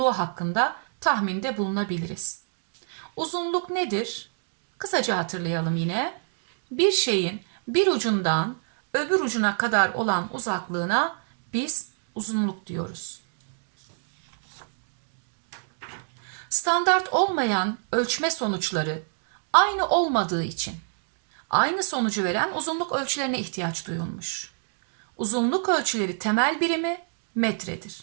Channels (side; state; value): left; silent; digital silence